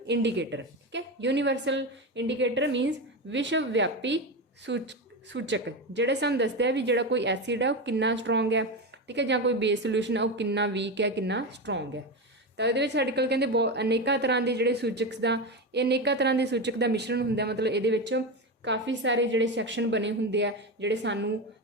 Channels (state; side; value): normal; both; correlation 0.17